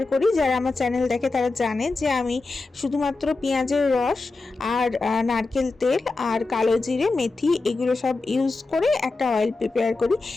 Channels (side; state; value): right; quieter; 3.6 dB